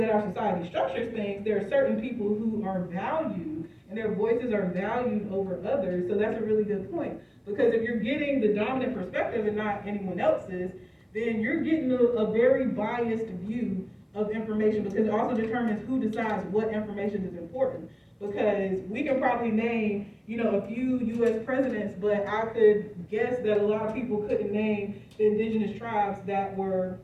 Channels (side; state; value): both; identical; correlation 1.00